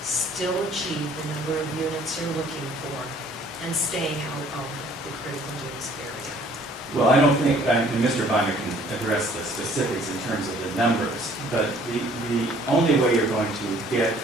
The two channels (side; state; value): both; normal; correlation 0.57